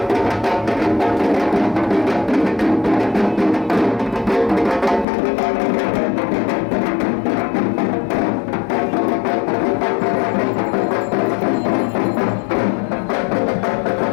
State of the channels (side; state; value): right; drops out; at 5.1 s